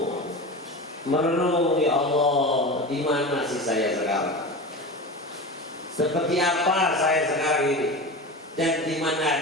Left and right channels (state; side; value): normal; both; correlation 0.28